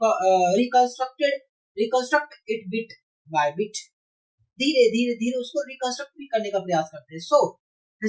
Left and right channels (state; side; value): identical; both; correlation 1.00